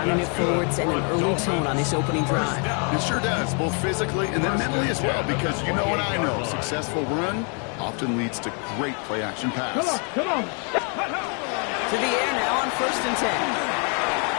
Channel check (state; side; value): quieter; right; 38.8 dB